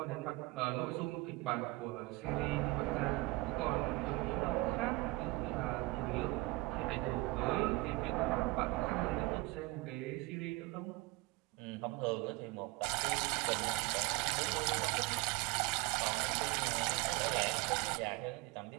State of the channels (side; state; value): left; quieter; 23.1 dB